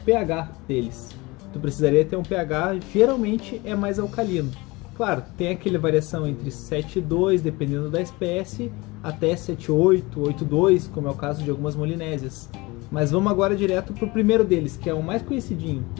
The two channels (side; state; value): right; quieter; 23.3 dB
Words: deles. Tu precisaria ter um pH, geralmente é mais alcalino. Claro, tu tem aquela variação entre 7,2, dependendo da espécie, até 7,8, 8,2, como é o caso de algumas molinésias. Mas vamos agora direto pro primeiro deles, que é o mais conhecidinho.